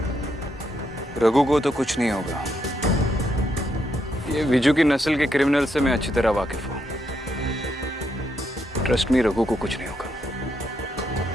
रघु को तो कुछ नहीं होगा। ये विजू की नस्ल के क्रिमिनल से मैं अच्छी तरह वाकिफ हूं। ट्रस्ट मी, रघु को कुछ नहीं होगा।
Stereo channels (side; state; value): both; normal; correlation 0.78